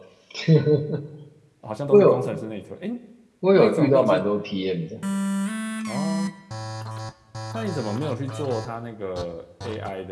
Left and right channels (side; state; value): both; identical; correlation 1.00